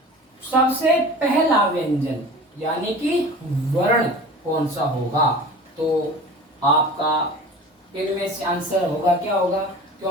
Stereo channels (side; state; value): both; normal; correlation 0.39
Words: सबसे पहला व्यंजन यानी कि वर्ण कौन सा होगा? तो आपका इनमें से आंसर होगा क्या होगा?